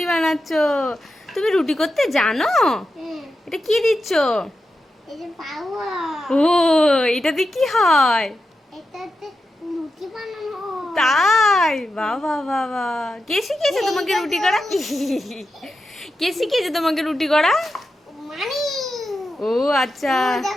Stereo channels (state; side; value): normal; both; correlation 0.89